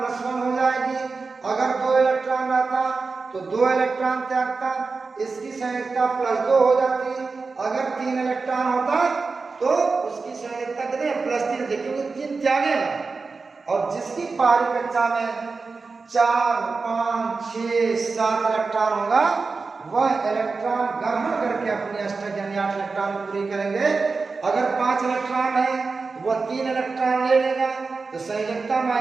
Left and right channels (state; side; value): quieter; left; 4.3 dB